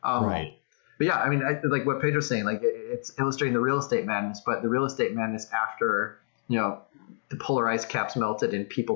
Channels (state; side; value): silent; right; digital silence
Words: Right. But yeah, I mean, like what Pedro's saying, like it's illustrating the real estate madness, but the real estate madness after, the polar ice caps melted and